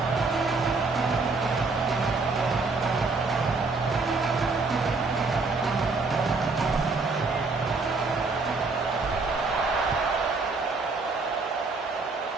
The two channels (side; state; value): left; quieter; 3.9 dB